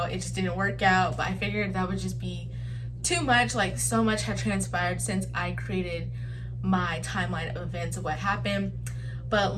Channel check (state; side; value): identical; both; correlation 1.00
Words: it just didn't work out, but I figured that would just be too much. Like, so much had transpired since I created my timeline of events of what happened. But